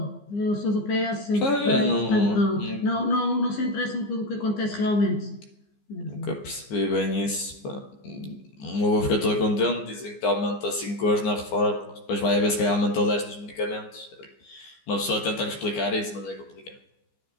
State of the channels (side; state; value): right; late; 15 ms